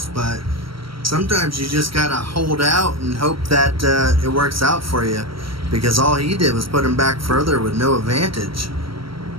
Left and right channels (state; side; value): late; left; 0.74 ms